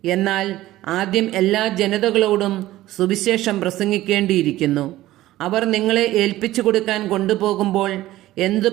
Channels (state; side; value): quieter; left; 15.8 dB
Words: എന്നാൽ ആദ്യം എല്ലാ ജനതകളോടും സുവിശേഷം പ്രസംഗിക്കേണ്ടിയിരിക്കുന്നു. അവർ നിങ്ങളെ ഏൽപ്പിച്ചു കൊടുക്കാൻ കൊണ്ടുപോകുമ്പോൾ എന്തു